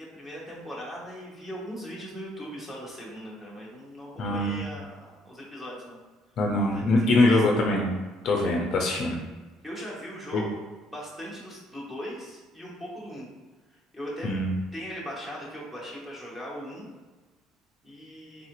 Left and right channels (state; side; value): normal; both; correlation 0.70